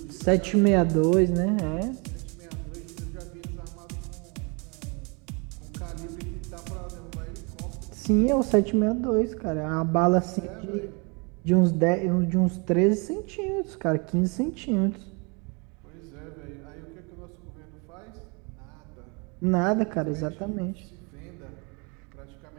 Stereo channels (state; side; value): quieter; left; 31.7 dB